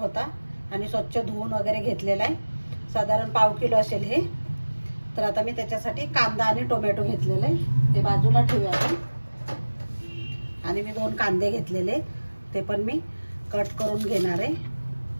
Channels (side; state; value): both; inverted; correlation -1.00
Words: आणि स्वच्छ धुवून वगैरे घेतलेला आहे. साधारण पाव किलो असेल हे. तर आता मी त्याच्यासाठी कांदा आणि टोमॅटो घेतलेले आहे, ते बाजूला ठेवूया आपण. आणि मी 2 कांदे घेतलेले, ते पण मी कट करून घेणार आहे